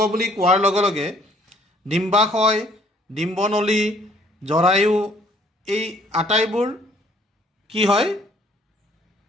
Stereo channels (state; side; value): normal; both; correlation 0.60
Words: বুলি কোৱাৰ লগে লগে ডিম্বাশয়, ডিম্বনলী, জৰায়ু এই আটাইবোৰ কি হয়?